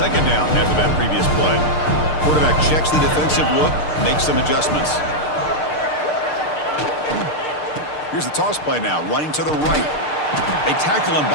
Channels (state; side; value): late; right; 6.6 ms